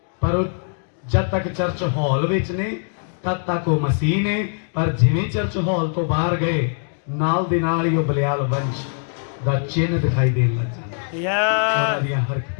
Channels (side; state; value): right; silent; 61 dB below the other